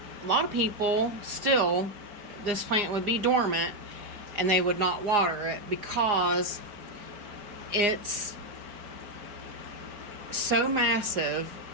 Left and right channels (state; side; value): late; left; 4.9 ms